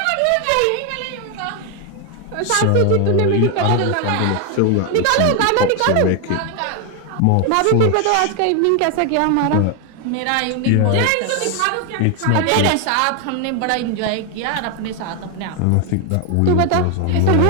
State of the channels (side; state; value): both; different; correlation 0.01